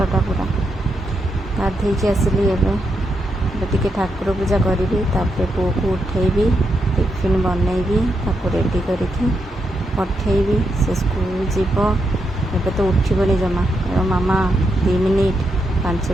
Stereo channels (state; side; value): normal; both; correlation 0.82